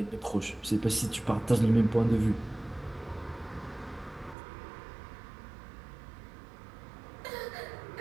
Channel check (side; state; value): left; drops out; at 4.4 s